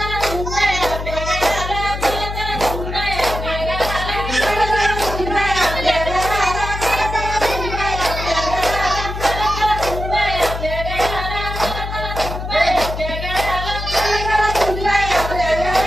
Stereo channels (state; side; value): noise; left; hum, 6 dB below the sound